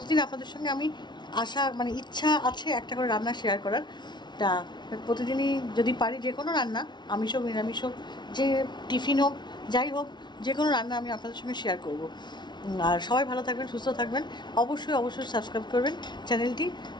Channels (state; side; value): late; right; 0.21 ms